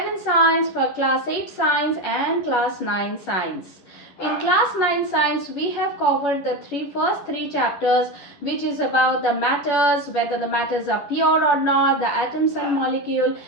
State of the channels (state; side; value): late; right; 11 ms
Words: science, for class 8 science and class 9 science. In class 9 science, we have covered the first three chapters, which is about the matters, whether the matters are pure or not, the atoms and molecule,